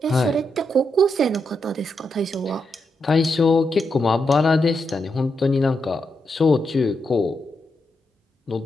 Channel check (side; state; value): both; normal; correlation 0.83